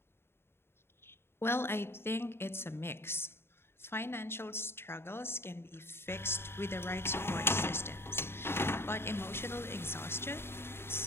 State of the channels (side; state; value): right; late; 0.11 ms